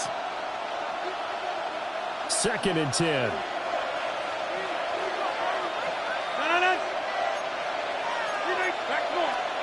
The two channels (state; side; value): identical; both; correlation 1.00